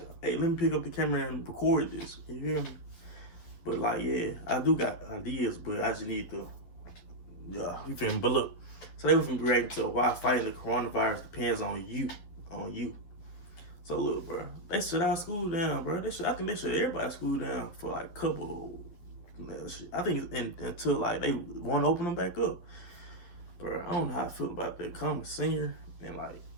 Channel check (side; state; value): right; late; 11 ms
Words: hey, let me pick up the camera and record this. You hear me? But like, yeah, I do got ideas, but I just need to, you feel me? But look, today we're gonna be reacting to why fighting the coronavirus depends on you, So look, bro, they shut our school down, bro. I think they shut everybody's school down for like a couple. I think until like they want to open them back up, bro. I don't know how I feel about that. Coming senior and like